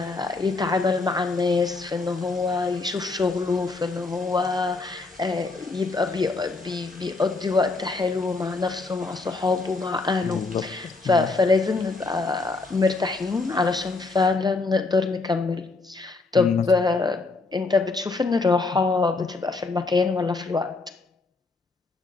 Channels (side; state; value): right; quieter; 3.8 dB